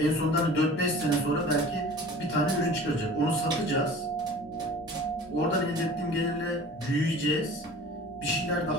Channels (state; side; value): normal; both; correlation 0.42